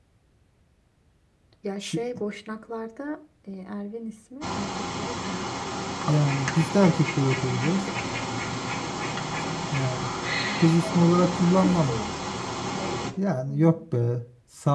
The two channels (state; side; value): identical; both; correlation 1.00